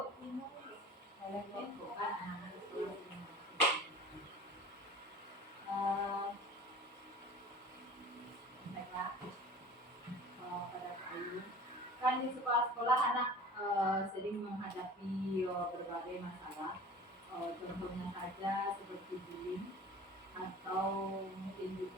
Kan di sekolah-sekolah anak sering menghadapi berbagai masalah, contohnya saja seperti bullying, atau mungkin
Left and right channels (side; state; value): both; normal; correlation 0.41